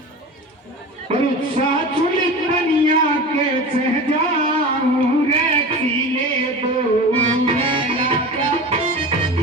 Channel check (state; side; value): normal; both; correlation 0.32